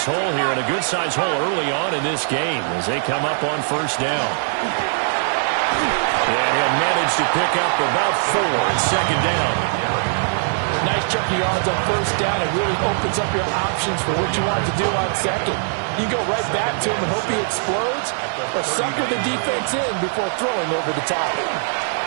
hole here, and a good-sized hole early on in this game as they come up on first down. And he'll manage to pick up about 4 in second down. Nice chunk of yards on first down. It really opens up your options for what you want to do on second. You go right back to him and hope he explodes, or sucker the defense in before throwing over the top.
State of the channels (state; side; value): silent; left; digital silence